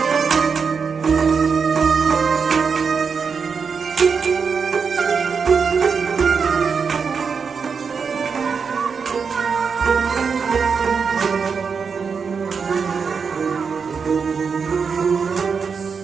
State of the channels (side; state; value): left; quieter; 5.7 dB